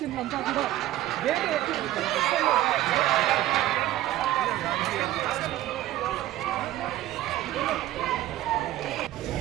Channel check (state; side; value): quieter; left; 14.4 dB